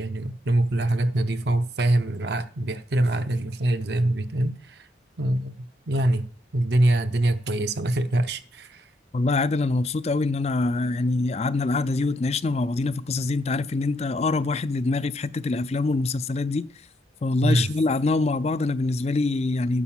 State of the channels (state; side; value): normal; both; correlation 0.77